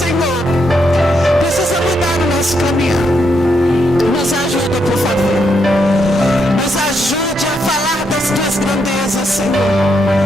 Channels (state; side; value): normal; both; correlation 0.78